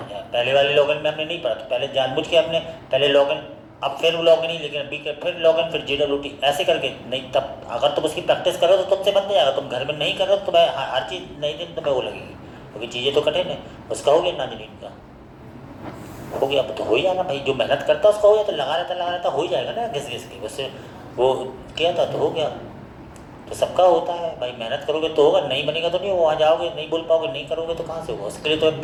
पहले वाले लॉगिन में हमने नहीं पढ़ा, तो पहले जानबूझ के हमने पहले लॉगिन, अब फिर लॉगिन ही, लेकिन अभी फिर लॉगिन, फिर JWT ऐसे करके नहीं। तब अगर तुम उसकी प्रैक्टिस करो तो तुमसे बन जाएगा। तुम घर में नहीं कर रहे हो तो तुम्हें हर चीज़ नई दिन तुम्हें वो लगेगी, क्योंकि चीज़ें तो कठिन है। उसका हो गया नाजरीन का, हो गया। अब तो हो ही जाना भाई, जो मेहनत करता उसका हो गया, तो लगा रहता हो ही जाएगा ना, घिस घिस के। उससे वो किया था तो हो गया। तो सबका होता है भाई, मेहनत करोगे तो होगा, नहीं बनेगा तो नहीं, वहाँ जाओगे नहीं बोल पाओगे, नहीं करोगे तो कहाँ से होगा। उसके लिए तो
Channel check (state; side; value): identical; both; correlation 1.00